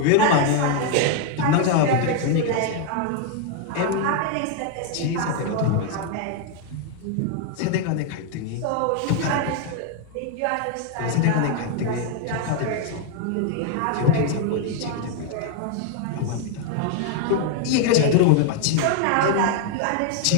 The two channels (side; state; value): both; different; correlation 0.00